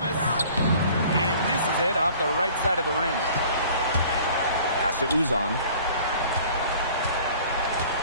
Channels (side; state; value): both; inverted; correlation -0.49